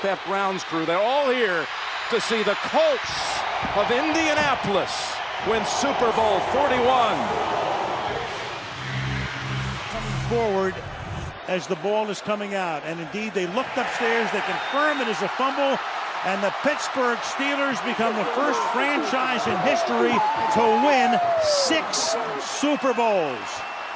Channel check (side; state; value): both; identical; correlation 1.00